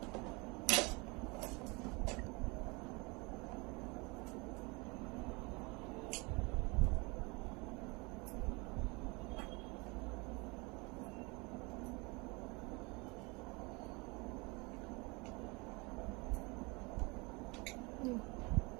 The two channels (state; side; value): quieter; left; 27.5 dB